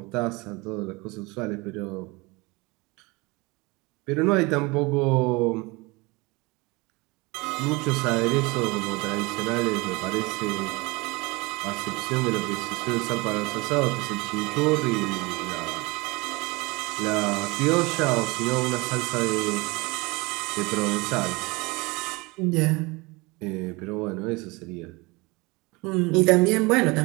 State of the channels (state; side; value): quieter; left; 25.1 dB